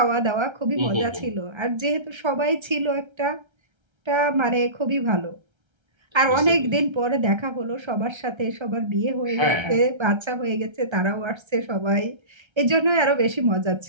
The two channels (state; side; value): late; left; 1.3 ms